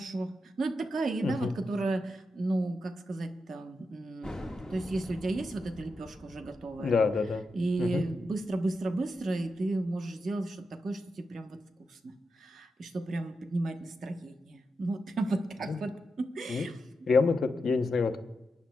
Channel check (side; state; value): both; normal; correlation 0.87